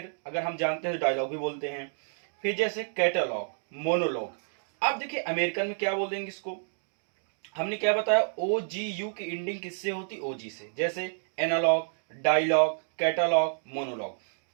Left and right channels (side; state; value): left; silent; digital silence